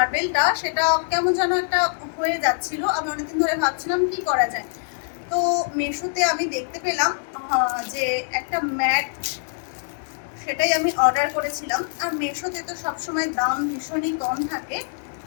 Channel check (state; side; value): silent; right; 63 dB below the other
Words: সেটা কেমন যেন একটা হয়ে যাচ্ছিল। আমি অনেকদিন ধরে ভাবছিলাম কি করা যায়। তো মিশোতে আমি দেখতে পেলাম যে একটা ম্যাট, সেটাই আমি অর্ডার করেছিলাম। আর মিশোতে তো সবসময় দাম ভীষণই কম থাকে,